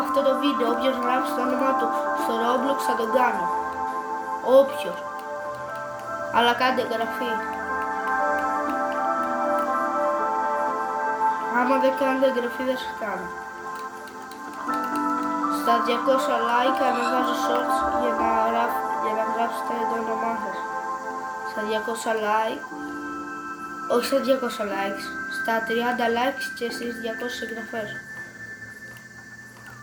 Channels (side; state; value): both; identical; correlation 1.00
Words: αυτό το βίντεο. Όποιος γράψει το όνομα του στο Roblox θα τον κάνω. Όποιος. Αλλά κάντε εγγραφή. Άμα δεν κάνετε εγγραφή δεν σας κάνω. Στα 200 like ανεβάζω shorts για να γράψετε το όνομά σας. Στα 200 like, όχι στα 200 likes, στα 30 likes και στις 200 εγγραφές.